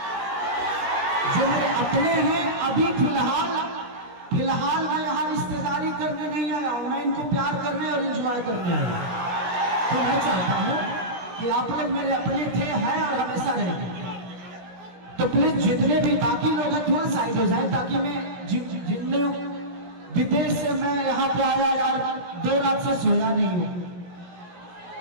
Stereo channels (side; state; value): left; late; 17 ms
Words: जो मेरे अपने हैं, अभी फिलहाल मैं यहाँ रिश्तेदारी करने नहीं आया हूँ, मैं इनको प्यार करने और एंजॉय करने आया हूँ। तो मैं चाहता हूँ कि आप लोग मेरे अपने थे, हैं और हमेशा रहेंगे। तो प्लीज जितने भी बाकी लोग हैं थोड़ा साइड हो जाए, ताकि मैं जितने विदेश से मैं यहाँ पे आया यार, 2 रात से सोया नहीं हूँ।